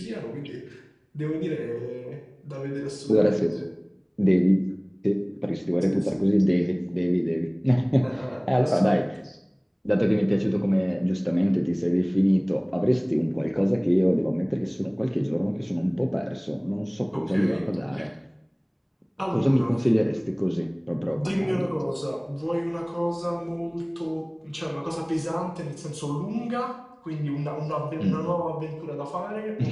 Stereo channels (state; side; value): identical; both; correlation 1.00